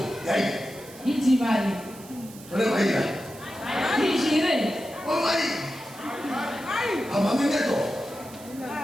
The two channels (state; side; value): noise; right; hiss, 19 dB below the sound